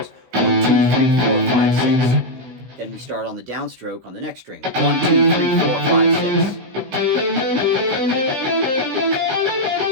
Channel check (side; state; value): left; late; 16 ms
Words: 1, 2, 3, 4, 5, 6. Then we start on the downstroke on the next string. 1, 2, 3, 4, 5, 6.